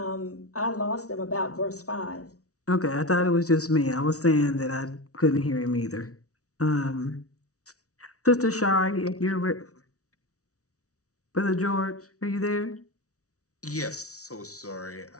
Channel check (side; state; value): right; late; 0.66 ms